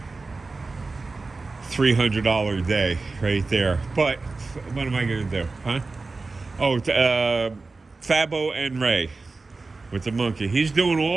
$300 day right there. But what am I going to do, huh? Oh, Fabo and Ray with the monkey. He's doing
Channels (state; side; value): quieter; left; 3.7 dB